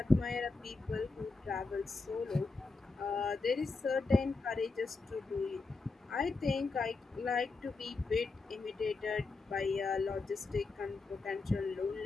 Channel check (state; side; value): quieter; right; 3.8 dB